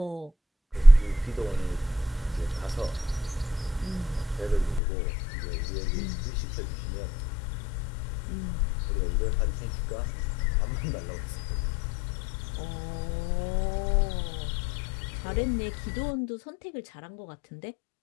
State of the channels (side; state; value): right; drops out; at 4.8 s